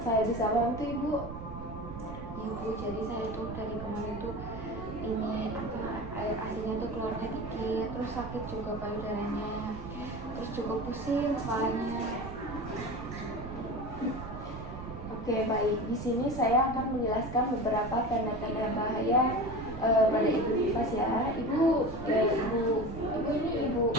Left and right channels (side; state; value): right; noise; rumble, 10 dB below the sound